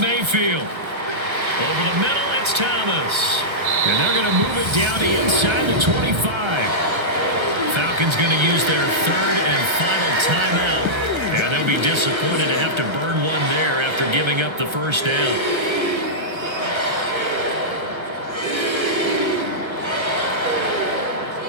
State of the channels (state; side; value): late; left; 1.3 ms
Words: Over the middle, it's Thomas. And they're going to move it down to inside the 25. Falcons going to use their third and final timeout. And they'll be disappointed to have to burn one there after giving up the first down.